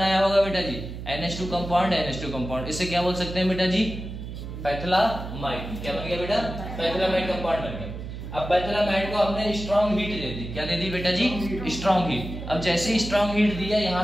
होगा बेटा जी? NH2 compound. इसे क्या बोल सकते हैं बेटा जी? पैथलामाइड। क्या बन गया बेटा? पैथलामाइड कंपाउंड बन गया। अब पैथलामाइड को हमने स्ट्रॉन्ग हीट दे दी। क्या दे दी बेटा जी? Strong heat. अब जैसे ही स्ट्रॉन्ग हीट दिया, यहाँ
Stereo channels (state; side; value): noise; right; hum, 9 dB below the sound